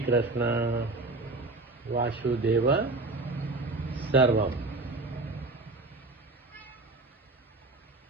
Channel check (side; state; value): left; quieter; 3.1 dB